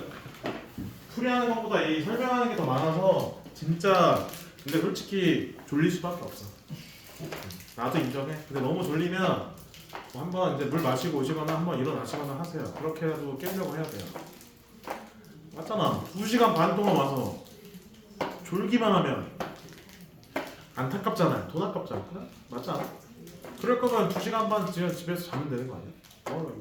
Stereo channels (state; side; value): identical; both; correlation 1.00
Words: 풀이하는 것보다 이 설명하는 게 더 많아서 진짜 근데 솔직히 졸릴 수밖에 없어. 나도 인정해. 근데 너무 졸리면 뭐 한번 이제 물 마시고 오시거나 한번 일어나시거나 하세요. 그렇게라도 깨려고 해야 돼요. 맞잖아. 2시간 반 동안 와서 졸기만 하면 안타깝잖아요. 돈 아깝잖아. 그래? 맞지 않아? 그럴 거면 2시간 반 집에서 자면 되는 거 아니야?